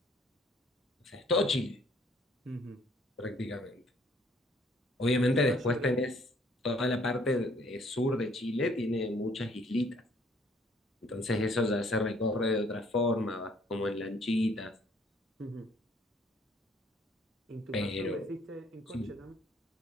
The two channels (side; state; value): both; normal; correlation 0.62